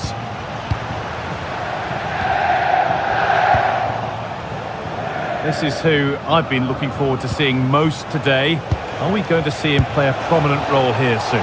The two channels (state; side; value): identical; both; correlation 1.00